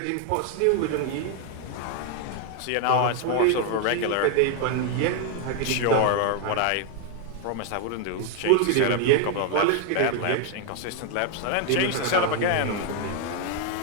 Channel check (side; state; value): both; different; correlation 0.00